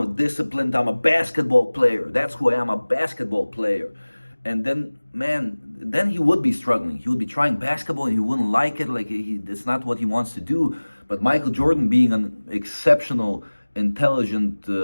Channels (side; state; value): both; inverted; correlation -1.00